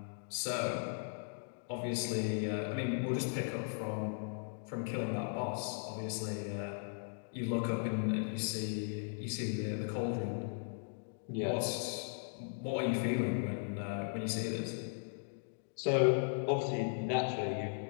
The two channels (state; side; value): silent; right; digital silence